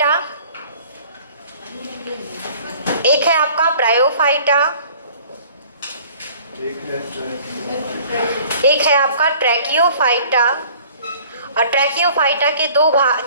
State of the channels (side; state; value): both; inverted; correlation -0.51